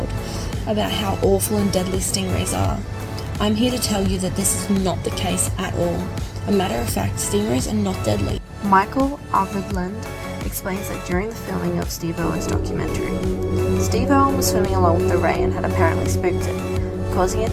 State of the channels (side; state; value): both; identical; correlation 1.00